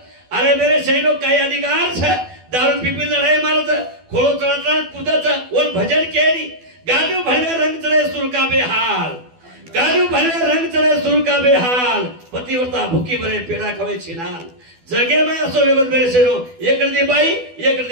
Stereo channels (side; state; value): left; late; 12 ms